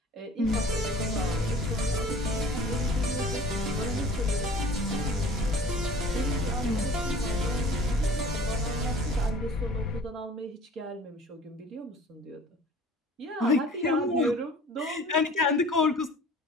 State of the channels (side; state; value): both; normal; correlation 0.46